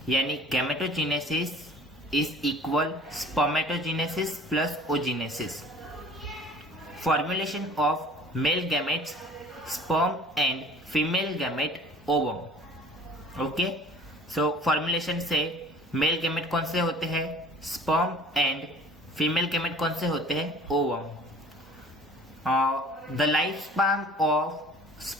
यानी gametogenesis is equal spermatogenesis plus oogenesis. Formulation of male gametes sperm and female gamete ovum। Okay, so formulation से मेल गैमेट कौन से होते हैं, स्पर्म, एंड फीमेल गैमेट कौन से होते हैं, ovum. The life span of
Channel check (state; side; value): normal; both; correlation 0.48